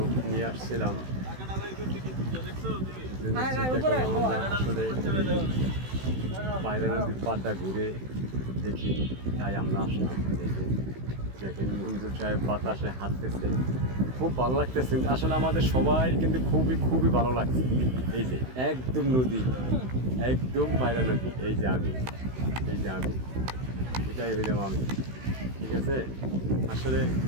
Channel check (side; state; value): left; late; 16 ms